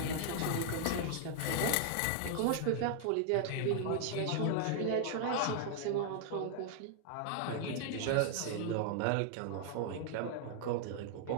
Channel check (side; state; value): both; different; correlation 0.00